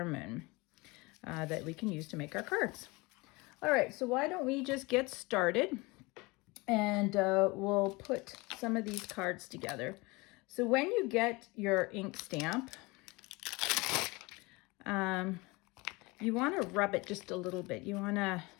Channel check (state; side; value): quieter; right; 24.6 dB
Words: that we can use to make our cards. All right, so why don't we just get started, and we'll put some of these cards together. So when you get your ink stamp, you want to rub it just a little bit. You want to